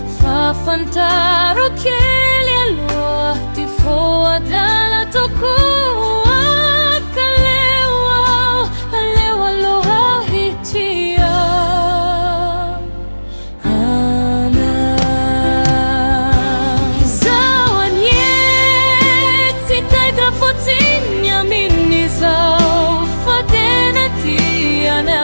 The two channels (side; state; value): both; inverted; correlation -1.00